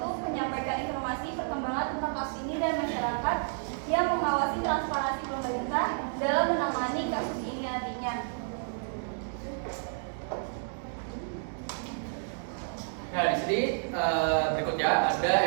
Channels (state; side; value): silent; left; digital silence